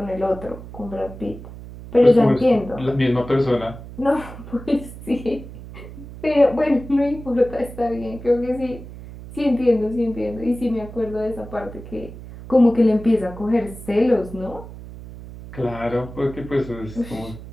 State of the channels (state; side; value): noise; right; hum, 14 dB below the sound